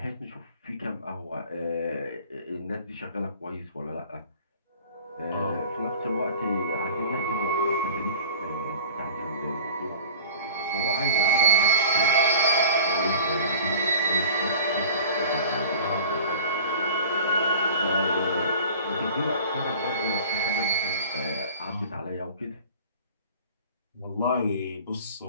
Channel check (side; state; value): both; inverted; correlation -0.42